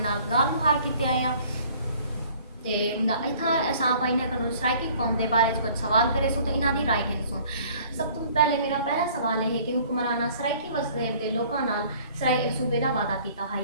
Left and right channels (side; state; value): both; inverted; correlation -0.54